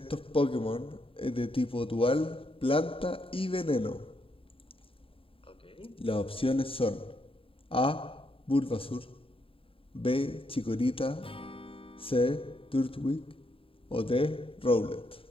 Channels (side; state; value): right; late; 0.27 ms